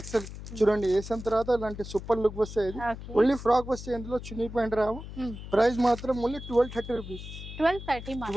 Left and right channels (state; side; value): noise; left; hum, 11 dB below the sound